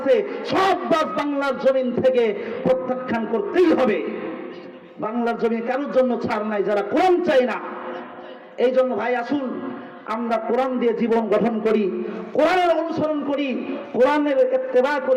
সব বাজ বাংলার জমিন থেকে প্রত্যাখ্যান করতেই হবে। বাংলার জমিনে কারোর জন্য ছাড় নাই যারা কোরআন চাই না। এই জন্য ভাই আসুন আমরা কোরআন দিয়ে জীবন গঠন করি, কোরআনের অনুসরণ করি, কোরআনের ইত্তেবা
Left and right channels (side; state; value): both; identical; correlation 1.00